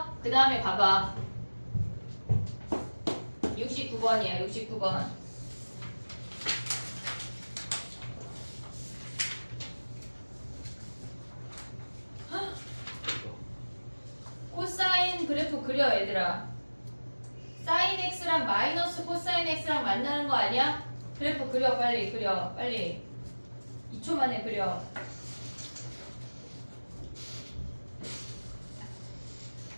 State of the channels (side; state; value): both; inverted; correlation -1.00